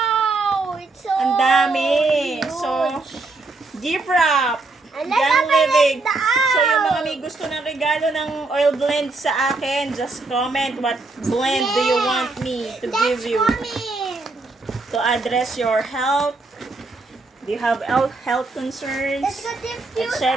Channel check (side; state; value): left; quieter; 3.4 dB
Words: It's so ang dami. huge. So, gift wrap. And let's Young open Living. it out. So, yung mga may gusto ng regalo ng oil blend sa akin, just comment what blend do you want me to give you Coming. to address your health. Do you have health concerns? Let's go diffuse. Etc.